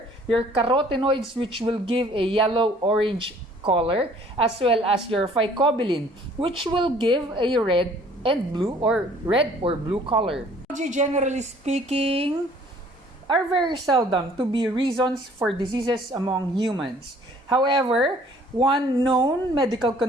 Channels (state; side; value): normal; both; correlation 0.56